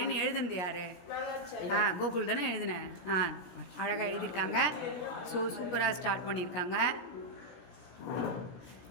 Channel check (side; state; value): right; late; 17 ms